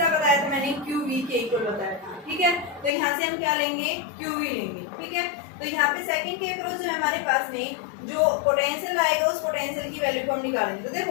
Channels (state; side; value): drops out; right; at 2.9 s